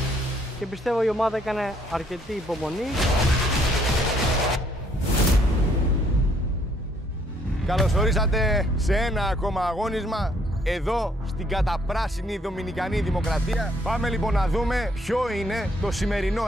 Και πιστεύω η ομάδα έκανε αρκετή υπομονή. Καλώς ορίσατε σε ένα ακόμα αγώνισμα εδώ στην καταπράσινη Δομινικανή Δημοκρατία. Πάμε λοιπόν να δούμε ποιο είναι το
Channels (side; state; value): both; normal; correlation 0.67